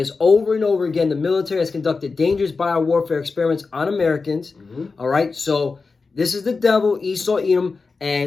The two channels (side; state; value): right; quieter; 4.3 dB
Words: over and over again. The military has conducted dangerous biowarfare experiments on Americans. All right, so this is the devil, Esau, Edom,